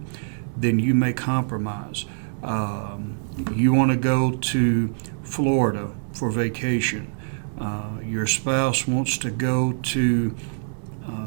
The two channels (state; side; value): silent; left; digital silence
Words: then you may compromise. You want to go to Florida for vacation. Your spouse wants to go to